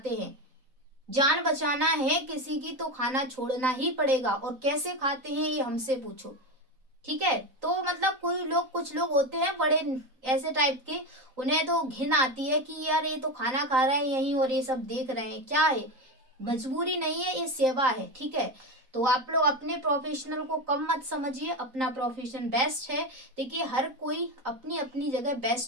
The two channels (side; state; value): left; late; 3.9 ms